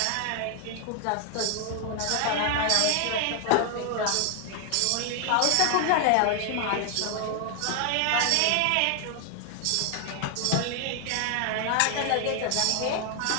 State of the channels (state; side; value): different; both; correlation 0.00